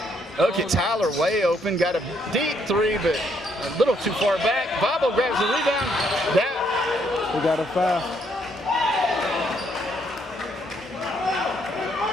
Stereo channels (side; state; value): both; normal; correlation 0.71